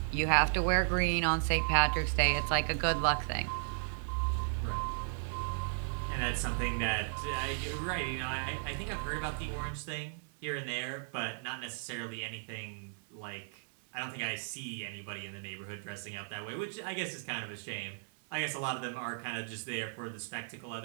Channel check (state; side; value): silent; left; 54 dB below the other